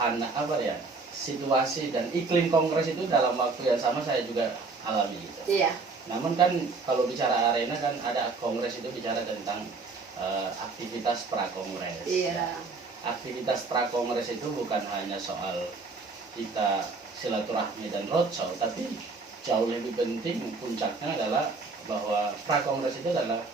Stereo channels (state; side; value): quieter; left; 4.1 dB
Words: apa ya, situasi dan iklim kongres itu dalam waktu yang sama saya juga alami gitu. Iya. Namun kan kalau bicara arena kan ada kongres itu bicara tentang aktivitas prakongres. Iya. Aktivitas prakongres itu bukan hanya soal kita silaturahmi dan roadshow, tapi jauh lebih penting puncaknya adalah bahwa prakongres itu adalah